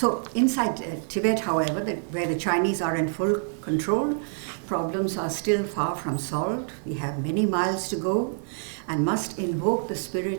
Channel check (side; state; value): left; silent; 61 dB below the other